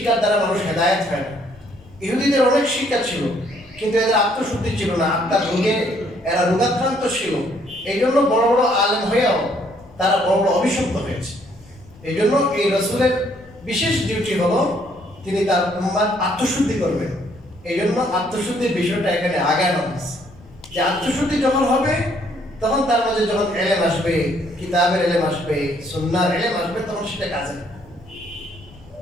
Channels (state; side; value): noise; left; rumble, 24 dB below the sound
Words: দ্বারা মানুষ হেদায়েত হয় না। ইহুদিদের অনেক শিক্ষা ছিল, কিন্তু এদের আত্মশুদ্ধি ছিল না, আত্মার রোগে এরা রোগাক্রান্ত ছিল। এই জন্য বড় বড় আলেম হয়েও তারা বড় বড় অভিশপ্ত হয়েছে। এই জন্য এই রাসূলের বিশেষ ডিউটি হলো তিনি তার উম্মার আত্মশুদ্ধি করবেন। এই জন্য আত্মশুদ্ধির বিষয়টা এখানে আগানো হয়েছে, যে আত্মশুদ্ধি যখন হবে তখন তার মাঝে যখন এলেম আসবে, কিতাবের এলেম আসবে, সুন্নাহর এলেম আসবে, তখন সেটা কাজে